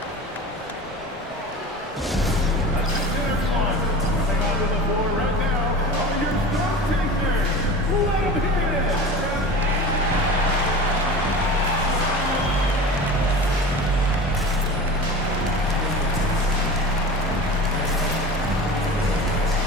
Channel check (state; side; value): normal; both; correlation 0.34